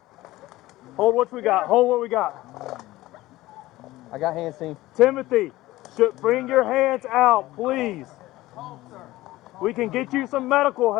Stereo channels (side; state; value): right; quieter; 17.5 dB